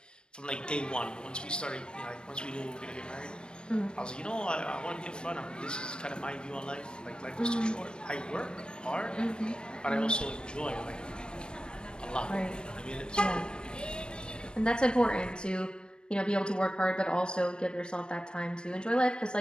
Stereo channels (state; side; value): late; right; 0.053 ms